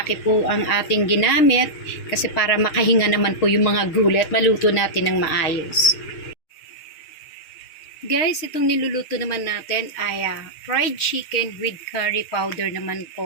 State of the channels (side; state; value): right; late; 6.5 ms